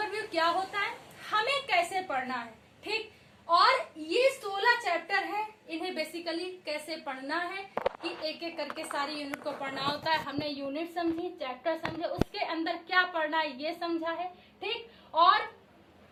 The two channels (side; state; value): both; identical; correlation 1.00